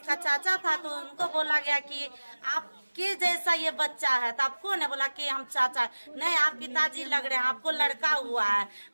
चाचा था, तो उनको बोला गया कि आपके जैसा ये बच्चा है। तो आप कौन है? बोला कि हम चाचा। नहीं, आप पिताजी लग रहे हैं, आपको लड़का हुआ है,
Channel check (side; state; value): both; inverted; correlation -1.00